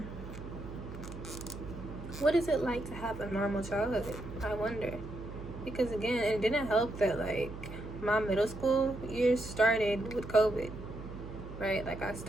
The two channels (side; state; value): right; noise; hum, 11 dB below the sound